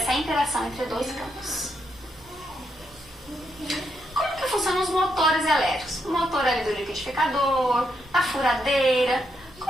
interação entre dois campos. Como que funcionam os liquidificador, da furadeira.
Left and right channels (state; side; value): normal; both; correlation 0.80